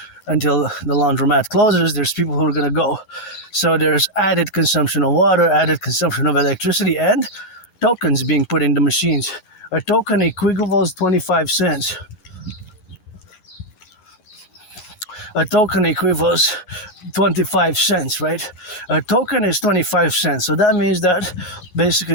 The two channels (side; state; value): right; late; 11 ms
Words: until the laundromat closes, there's people who are going to go. So there's added consumption of water, added consumption of electricity, and tokens being put in the machines. A token equivals 25 cents. A token equivals 25 cents, right? A token is 25 cents. So that means that basically